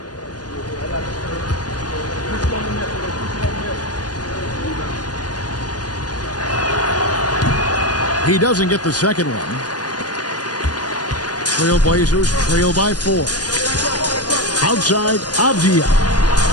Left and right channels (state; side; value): late; right; 0.69 ms